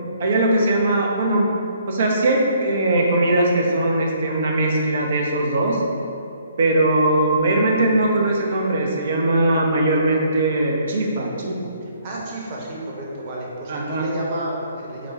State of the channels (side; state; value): both; inverted; correlation -0.65